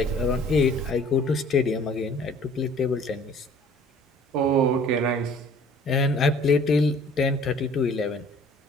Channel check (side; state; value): both; normal; correlation 0.52